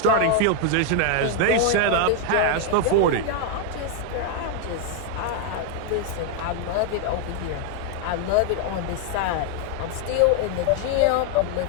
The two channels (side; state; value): both; different; correlation 0.00